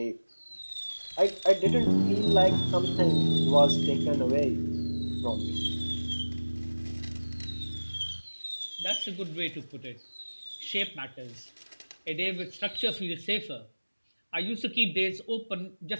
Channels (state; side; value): inverted; both; correlation -1.00